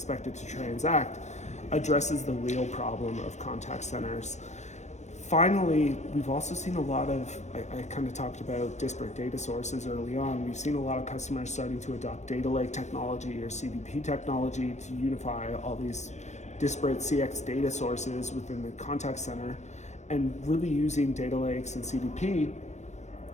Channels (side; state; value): right; late; 0.34 ms